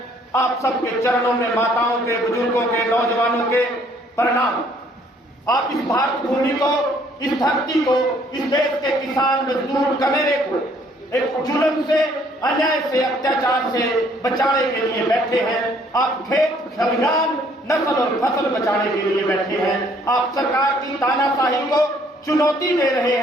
आप सबके चरणों में माताओं के, बुजुर्गों के, नौजवानों के प्रणाम। आप इस भारत भूमि को, इस धरती को, इस देश के किसान मजदूर कमेरे को एक जुल्म से, अन्याय से, अत्याचार से बचाने के लिए बैठे हैं। आप खेत खलिहान, नस्ल और फसल बचाने के लिए बैठे हैं। आप सरकार की तानाशाही को चुनौती दे रहे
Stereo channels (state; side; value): normal; both; correlation 0.63